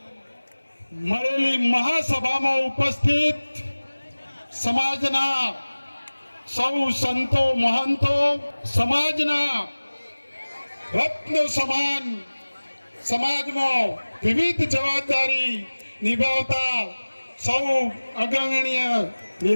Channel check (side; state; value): both; inverted; correlation -1.00